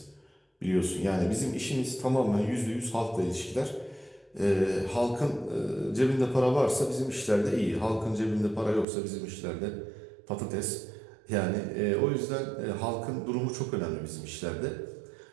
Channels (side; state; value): left; drops out; at 8.8 s